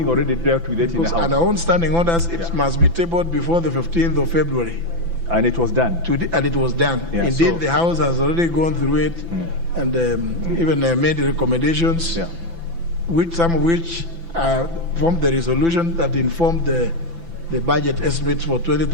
already dealt with it in the House. On our own standing orders, it must be tabled before the 15th of February. And it was done. And it was done. Yeah, Indeed, the House has already gone through it and even made recommendations, some of which formed the resolution that informed the budget estimates for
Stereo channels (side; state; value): left; late; 5.9 ms